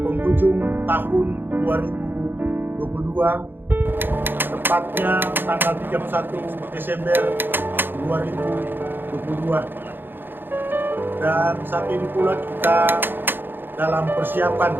penghujung tahun 2022, tepatnya tanggal 31 Desember 2022. Dan saat ini pula kita dalam persiapan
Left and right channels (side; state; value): left; late; 0.098 ms